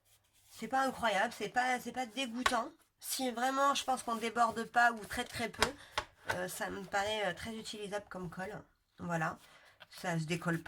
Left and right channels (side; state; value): both; identical; correlation 1.00